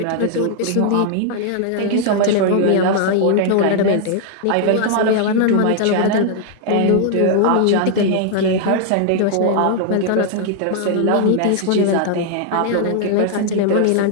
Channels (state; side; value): different; both; correlation 0.00